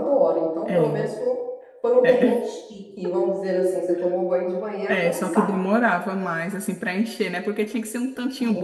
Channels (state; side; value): identical; both; correlation 1.00